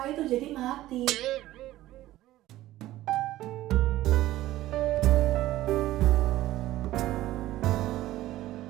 itu jadi mati.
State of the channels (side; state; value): left; quieter; 15.5 dB